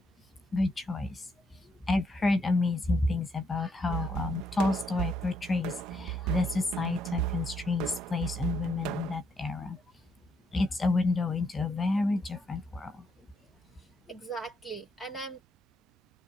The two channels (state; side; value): normal; both; correlation 0.75